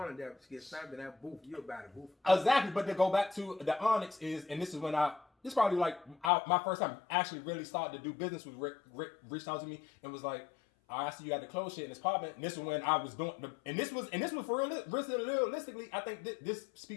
there, to get stamped in that booth. You about the booth. Exactly, but to go back to the Onyx is, and this is when this probably like my first time actually really started to do business with Rick. Rick reached out to me and was like, I see you got the clothes shit in this apartment. And this was when I was doing, and this was for realistically, I think this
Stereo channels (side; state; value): right; drops out; at 6.3 s